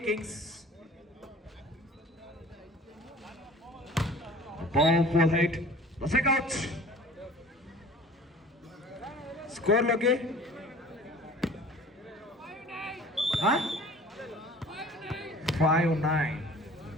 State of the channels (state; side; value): normal; both; correlation 0.46